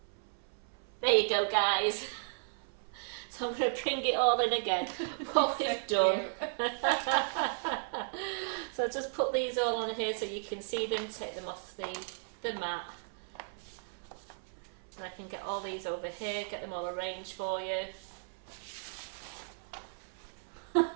you go, guys. So I'm going to bring it all in again, what we've done. So just put these all on here so you can see them, take them off the mat. And I can get all these over here, get them all arranged for you.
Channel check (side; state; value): left; silent; 54 dB below the other